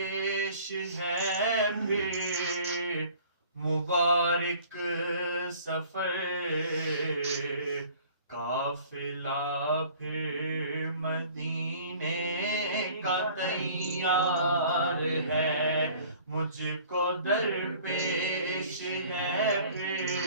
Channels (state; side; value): inverted; both; correlation -0.50